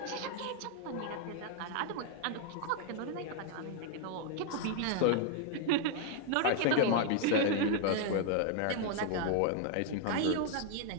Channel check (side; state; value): both; different; correlation 0.00